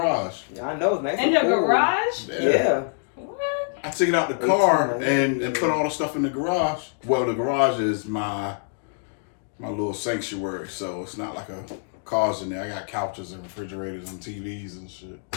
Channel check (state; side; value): silent; right; 62 dB below the other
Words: Yeah, I know. It's nice in the garage? Yeah. What? I took it out the car and put all the stuff in the garage. Well, the garage is my little sanctuary, so it's not like a car's in there. I got couches and refrigerators and TVs and shit.